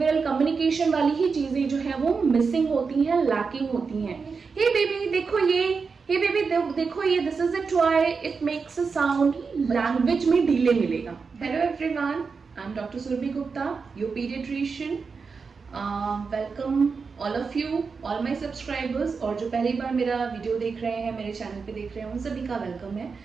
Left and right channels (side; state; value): left; quieter; 5.1 dB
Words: कम्युनिकेशन वाली ही चीजें जो है वो मिसिंग होती हैं, लैकिंग होती हैं। हे बेबी देखो ये, हे बेबी देखो ये, this is a toy, it makes a sound, language में डिले मिलेगा। Hello everyone, I am doctor Surabhi Gupta, your paediatrician. Welcome all of you, all my subscribers, और जो पहली बार मेरा वीडियो देख रहे हैं, मेरे चैनल पे देख रहे हैं, उन सभी का वेलकम है।